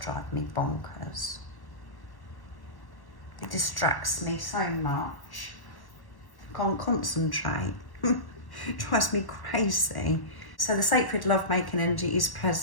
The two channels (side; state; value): right; late; 1.1 ms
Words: me bonkers. It distracts me so much. Can't concentrate. It drives me crazy. So the sacred love-making energy is